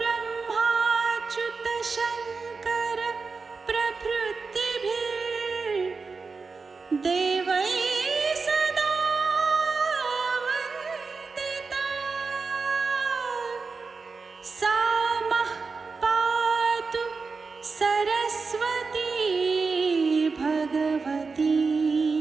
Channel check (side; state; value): left; quieter; 4.5 dB